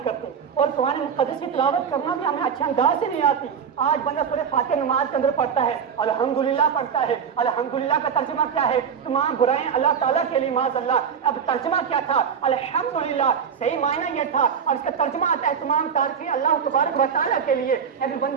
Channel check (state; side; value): quieter; left; 7.1 dB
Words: کرتے, اور قرآن مقدس کی تلاوت کرنا بھی ہمیں اچھے انداز سے نہیں آتی. آج بندہ سورہ فاتحہ نماز کے اندر پڑھتا ہے, الحمدللہ پڑھتا ہے. الحمدللہ کا ترجمہ کیا ہے؟ تمام برائیں اللہ تعالیٰ کے لیے معاذ اللہ. اب ترجمہ کیا تھا؟ الحمدللہ صحیح معنی یہ تھا, اور اس کا ترجمہ آتا ہے تمام تعریفیں اللہ تبارک و تعالیٰ کے لیے. لیکن